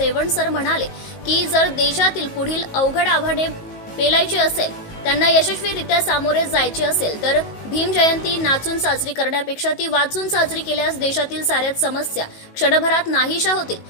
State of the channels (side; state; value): right; late; 19 ms